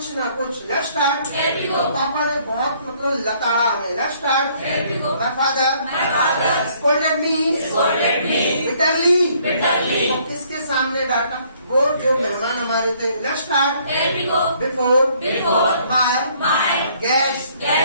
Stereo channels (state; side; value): inverted; both; correlation -0.63